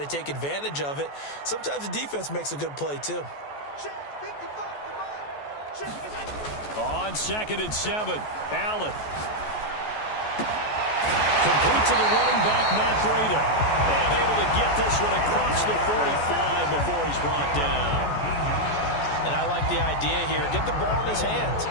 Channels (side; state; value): right; late; 14 ms